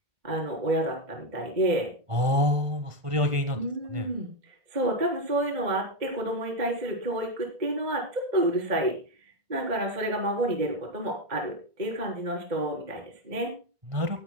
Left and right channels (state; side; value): late; left; 1.5 ms